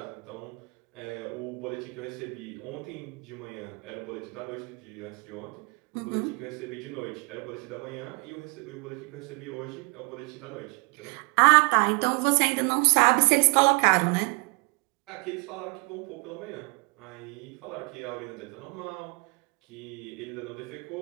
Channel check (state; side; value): quieter; left; 31.7 dB